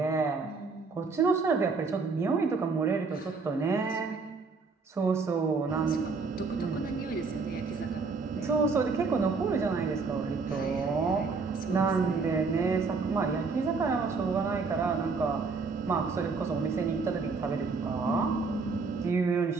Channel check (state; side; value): quieter; left; 4.5 dB